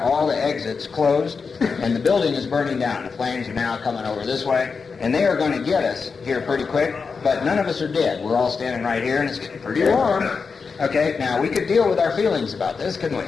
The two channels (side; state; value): right; quieter; 5.1 dB